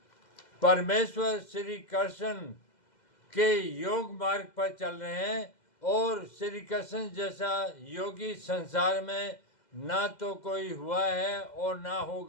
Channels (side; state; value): right; late; 2.0 ms